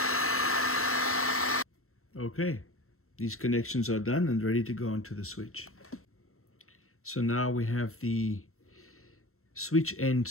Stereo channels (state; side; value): late; right; 0.63 ms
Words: Okay, these connections are done and ready to go onto the switch. So now we have the switch end